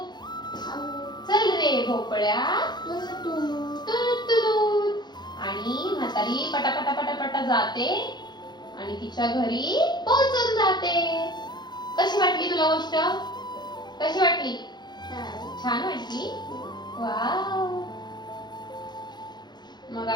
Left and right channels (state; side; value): late; right; 0.21 ms